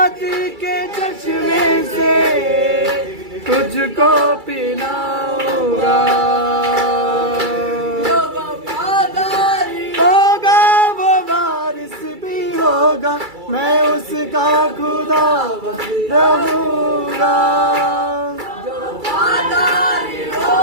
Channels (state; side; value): late; left; 2.3 ms